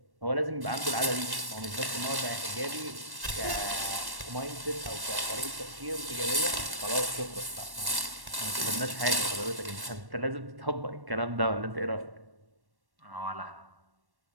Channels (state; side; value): late; left; 1.1 ms